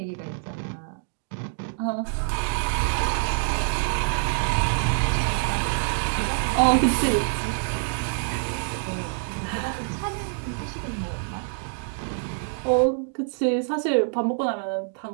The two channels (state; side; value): silent; left; digital silence